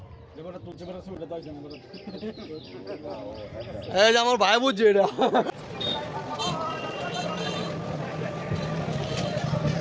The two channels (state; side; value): identical; both; correlation 1.00